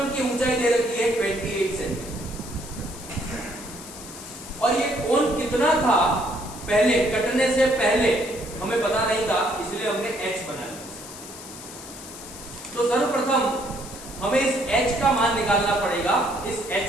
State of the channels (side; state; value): left; noise; hiss, 14 dB below the sound